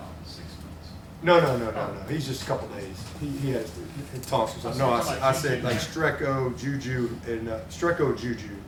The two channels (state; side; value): identical; both; correlation 1.00